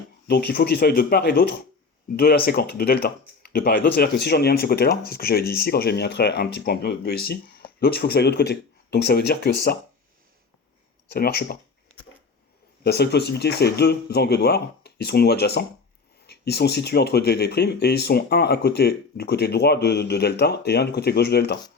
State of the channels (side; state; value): right; quieter; 4.5 dB